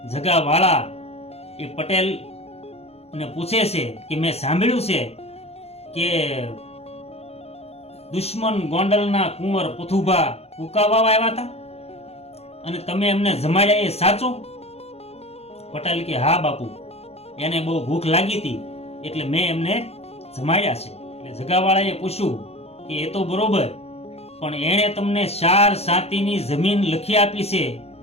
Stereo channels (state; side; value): late; right; 0.30 ms